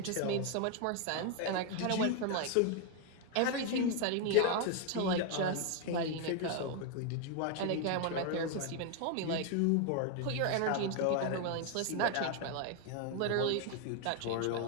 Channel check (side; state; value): both; different; correlation 0.01